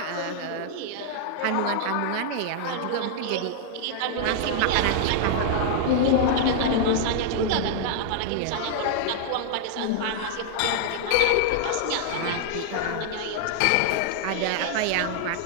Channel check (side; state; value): both; different; correlation 0.00